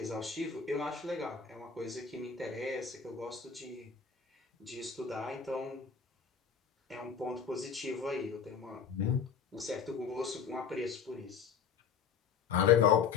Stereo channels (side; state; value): right; quieter; 6.6 dB